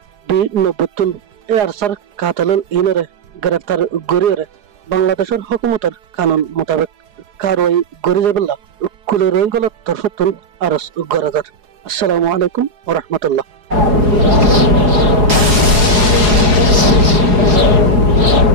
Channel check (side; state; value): left; late; 4.8 ms